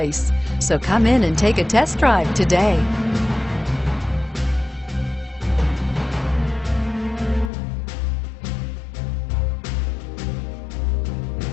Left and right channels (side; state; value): right; drops out; at 7.5 s